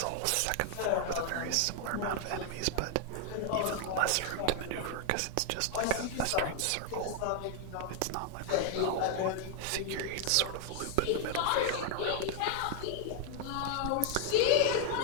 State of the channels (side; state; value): both; different; correlation 0.00